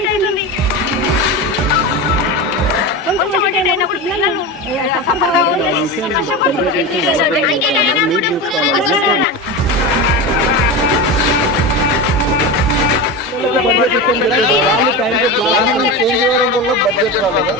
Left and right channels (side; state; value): both; normal; correlation 0.22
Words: అవుతుంది. కొంచెం అటెండ్ అయినప్పుడు పిల్లలు సఫర్ కావద్దని కష్టపడుతున్నారు.